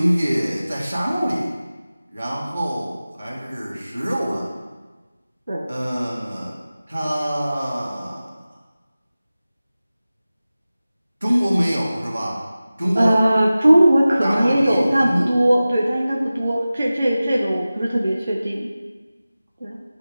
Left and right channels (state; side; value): inverted; both; correlation -0.96